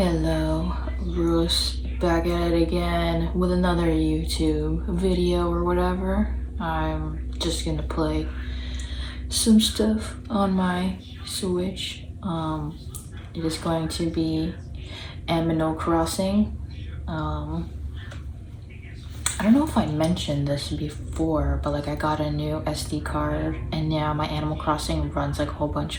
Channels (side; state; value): both; identical; correlation 1.00